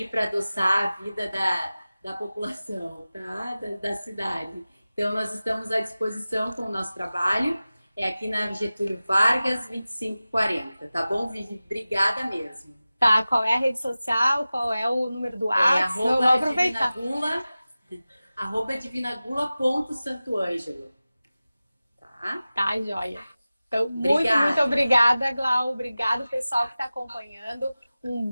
para adoçar a vida da população, tá? Da cidade. Então, nós estamos à disposição com o nosso trabalho. É aqui na Getúlio Vargas, 2540, tá bom, Vivi? Obrigada mesmo. Tá, qual é a rede social? Qual é o número do É WhatsApp? Vou aproveitar. @divinagula.santoângelo. Tá? Tá, joia. Então, Obrigada. muito obrigada, Glau. Obrigado, pessoal que está acompanhando. Um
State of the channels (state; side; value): inverted; both; correlation -0.96